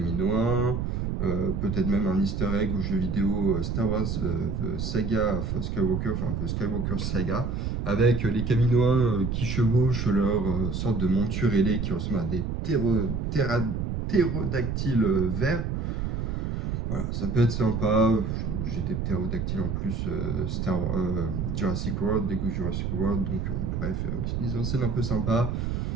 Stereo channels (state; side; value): noise; right; rumble, 2 dB below the sound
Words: peut-être même un easter egg au jeu vidéo Star Wars The Saga of Skywalker, enfin un peu Skywalker Saga, avec les Caminoins qui chevauchent leur sorte de monture ailée qui ressemble à des ptérodactyles verts. Voilà, ça peut être sympa. J'ai des ptérodactyles en plus, Jurassic World, Lego Jurassic World, donc on pourrait faire une petite mise en scène un peu sympa.